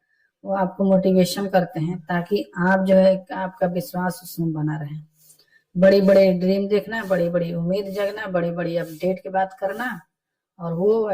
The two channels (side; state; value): both; identical; correlation 1.00